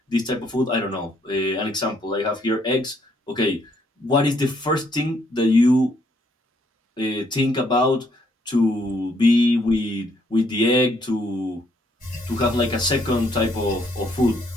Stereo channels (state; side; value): normal; both; correlation 0.70